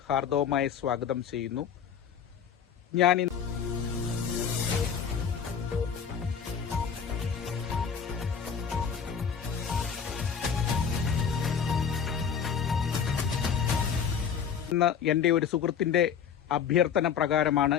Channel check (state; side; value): quieter; right; 7.4 dB